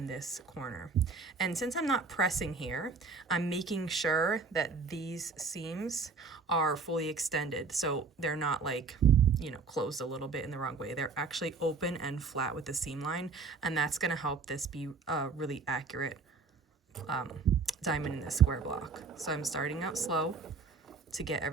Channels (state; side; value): quieter; left; 4.7 dB